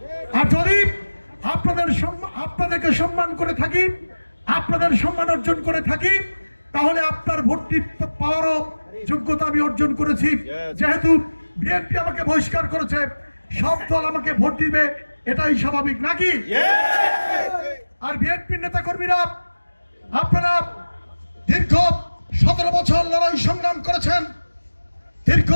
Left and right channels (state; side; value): inverted; both; correlation -1.00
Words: আর যদি আপনাদেরকে সম্মান করে থাকি, আপনাদের সম্মান অর্জন করে থাকি, তাহলে আপনার ভোটটি পাওয়ারও যোগ্যতা আমি অর্জন করেছি। যেহেতু বিএনপি আমাকে বহিষ্কার করেছে, সব দল আমাকে ভোট দিবে, এটাই স্বাভাবিক নাকি? আর বিএনপির নেতা কর্মীরা আপনারা দীর্ঘ 17 বছর লড়াই সংগ্রাম করেছেন, দীর্ঘ